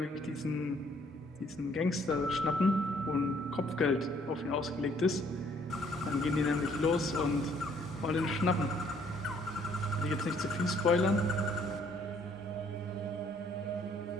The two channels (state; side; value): normal; both; correlation 0.63